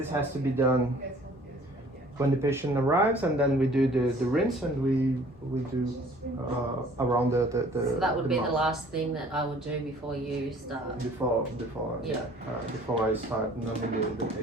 has to be done when the patient arrives, and then we do the rinse, and we do around the. So that would be mouth. the last thing that I would do before you start. Before I start numbing the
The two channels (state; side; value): normal; both; correlation 0.53